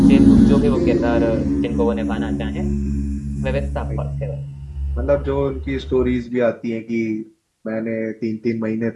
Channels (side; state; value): both; identical; correlation 1.00